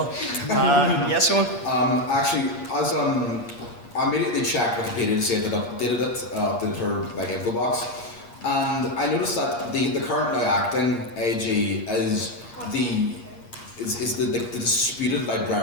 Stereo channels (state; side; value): late; right; 8.5 ms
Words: Yes, Eóin? Actually, as I immediately checked Wikipedia to see if it updated it, updated her like info box, and I noticed that the current now acting AG is the disputed